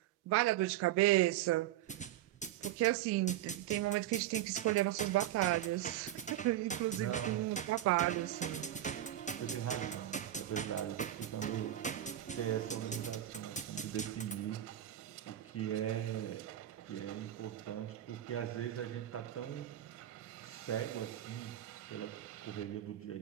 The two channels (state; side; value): quieter; left; 12.6 dB